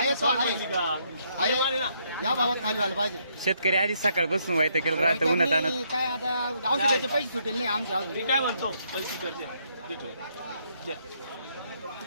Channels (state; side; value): inverted; both; correlation -0.73